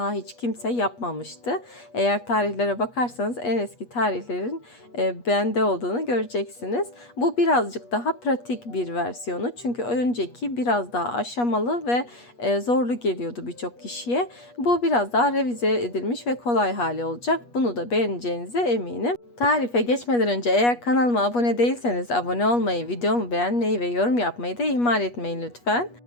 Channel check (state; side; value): late; right; 8.3 ms